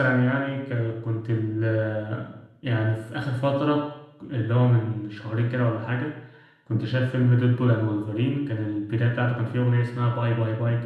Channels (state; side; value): identical; both; correlation 1.00